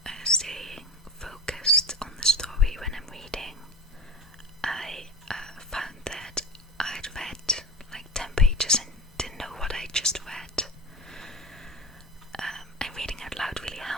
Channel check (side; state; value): both; normal; correlation 0.33